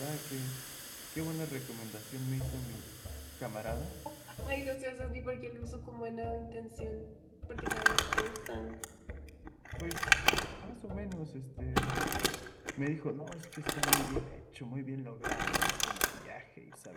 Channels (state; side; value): identical; both; correlation 1.00